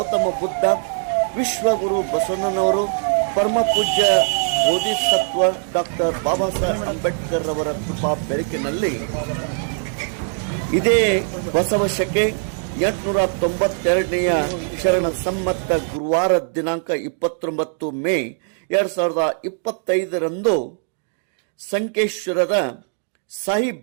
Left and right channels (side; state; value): left; silent; 65 dB below the other